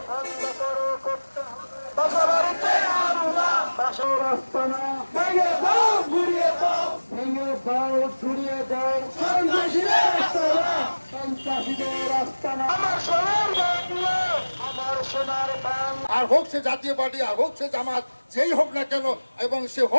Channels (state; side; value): inverted; both; correlation -1.00